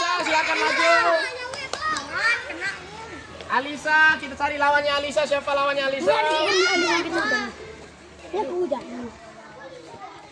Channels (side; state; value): both; identical; correlation 1.00